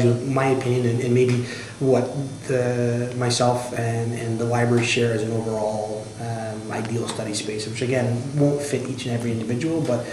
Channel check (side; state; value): both; identical; correlation 1.00